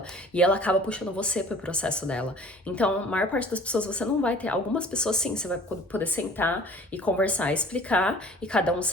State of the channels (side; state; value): both; normal; correlation 0.49